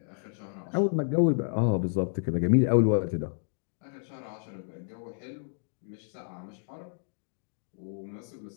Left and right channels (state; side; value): silent; right; digital silence